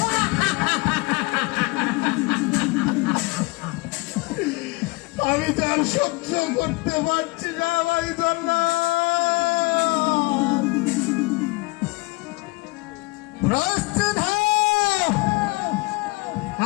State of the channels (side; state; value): right; quieter; 24.8 dB